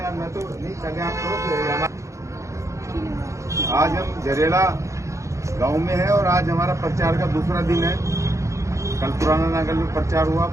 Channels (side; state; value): left; late; 0.15 ms